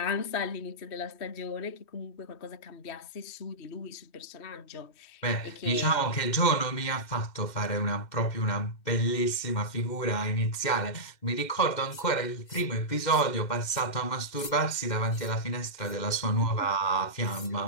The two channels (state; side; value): late; right; 2.6 ms